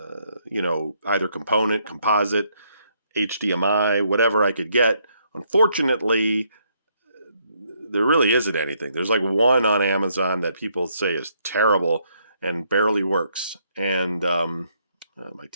you know, either component, composite, HDMI, whatever I could get. Unfortunately, there really isn't anything. There's like one on Amazon that people say is terrible and barely works. And my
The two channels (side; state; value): both; inverted; correlation -0.72